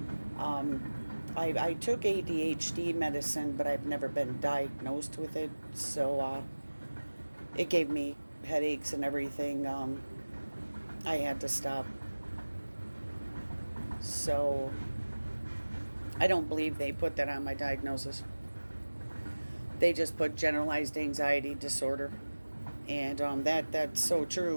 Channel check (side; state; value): both; inverted; correlation -1.00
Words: I took ADHD medicine, but I've never been diagnosed with it. So it gave me headaches and everything. I had to stop. So I don't believe they put that on my diagnosis. They just put generalized anxiety disorder. And that's so